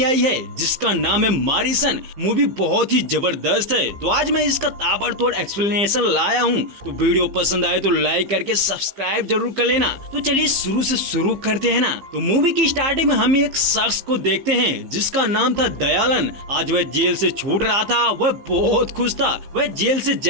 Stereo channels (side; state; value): left; late; 15 ms